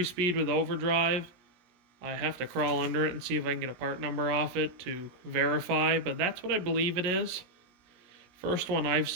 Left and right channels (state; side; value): late; left; 17 ms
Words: with overdrive. I have to crawl under it and see if I can get a part number off it to verify, but that's what I believe it is. First one I've